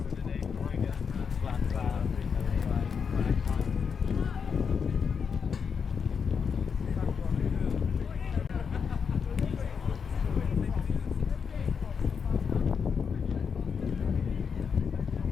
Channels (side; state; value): right; quieter; 6.3 dB